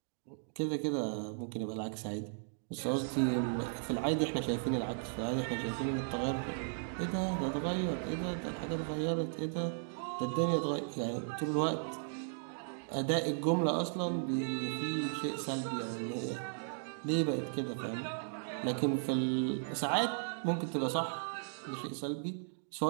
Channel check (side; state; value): left; silent; digital silence